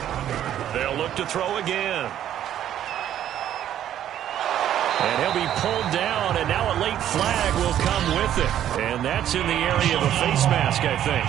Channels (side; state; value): left; quieter; 11.1 dB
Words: They'll look to throw again. And he'll be pulled down, and now a late flag will come with it. And that's in the area of a face mask, I think.